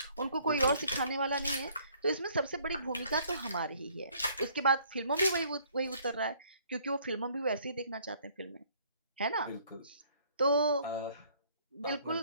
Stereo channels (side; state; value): both; inverted; correlation -0.61